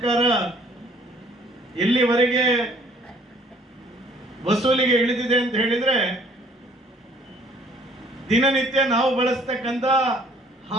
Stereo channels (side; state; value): both; normal; correlation 0.58